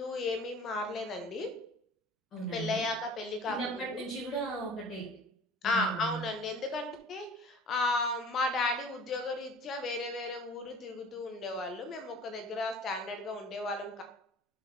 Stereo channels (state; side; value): normal; both; correlation 0.44